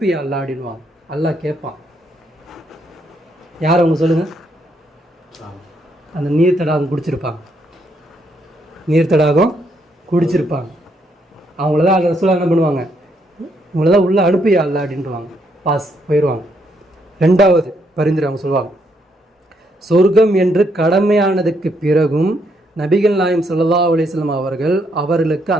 அல்லாஹ் அப்படின்வாங்க. அல்லாஹ் கேட்பான், யார் அவங்க சொல்லுங்கள், அந்த நீர் தடாகம் குடிச்சிருப்பாங்க, நீர் தடாகம் குடிச்சிருப்பாங்க, அவங்களதான் அந்த ரசூலா என்ன பண்ணுவாங்க, இவங்களதான் உள்ளே அனுப்பியா அல்லாஹ் அப்படின்ட்டுவாங்க, பாஸ் போயிடுவாங்க. 2வது பரிந்துரை அவங்க சொல்லுவாங்க, சொர்க்கம் என்று கடமையானதுக்கு பிறகும் நபிகள் நாயகம் ஸல்லல்லாஹு அலைஹி வஸல்லம் அவர்களுக்கு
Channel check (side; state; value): both; normal; correlation 0.74